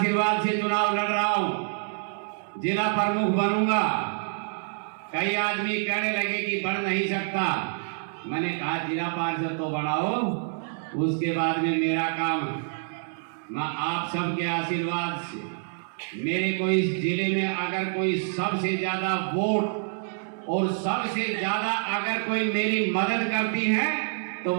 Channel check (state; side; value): silent; left; 60 dB below the other